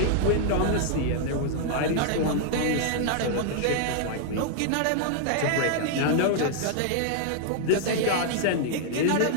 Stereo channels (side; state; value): both; different; correlation 0.00